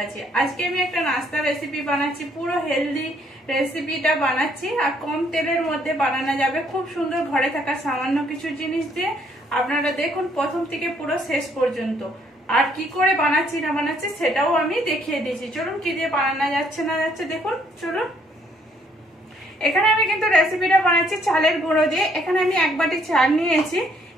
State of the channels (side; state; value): both; normal; correlation 0.67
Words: আছি। আজকে আমি একটা নাস্তা রেসিপি বানাচ্ছি, পুরো হেলদি রেসিপিটা বানাচ্ছি আর কম তেলের মধ্যে বানানো যাবে, খুব সুন্দর ঘরে থাকা সামান্য কিছু জিনিস দিয়ে। আপনারা দেখুন প্রথম থেকে পুরো শেষ পর্যন্ত। আর কি করে বানাচ্ছি না বানাচ্ছি সেটাও আমি দেখিয়ে দিয়েছি। চলুন কি দিয়ে বানানো যাচ্ছে না যাচ্ছে দেখুন, চলুন। এখানে আমি কিন্তু রেসিপিটা বানাচ্ছি চালের গুঁড়ো দিয়ে। এখানে আমি 1 বাটি চাল নিয়েছি।